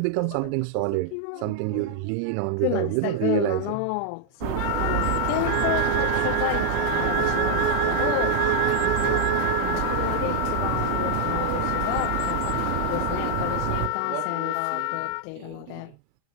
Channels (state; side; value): different; both; correlation 0.00